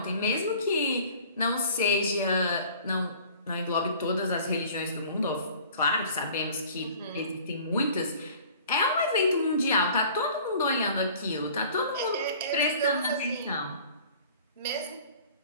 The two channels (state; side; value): inverted; both; correlation -0.48